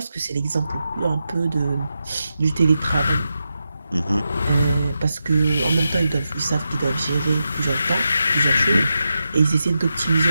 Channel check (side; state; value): both; inverted; correlation -0.88